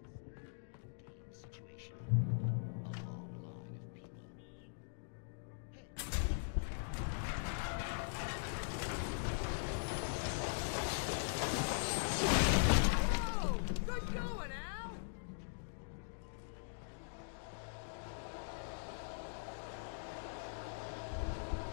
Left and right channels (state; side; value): silent; right; digital silence